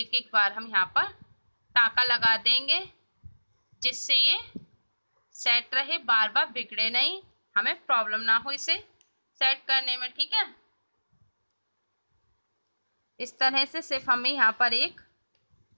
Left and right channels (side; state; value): both; inverted; correlation -1.00